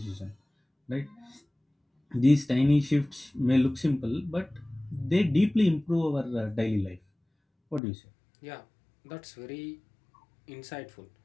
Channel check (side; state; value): right; drops out; at 7.8 s